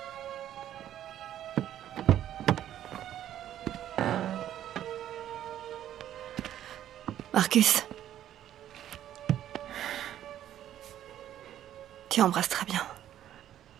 Marcus. Tu embrasses très bien.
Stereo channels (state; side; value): quieter; left; 11.5 dB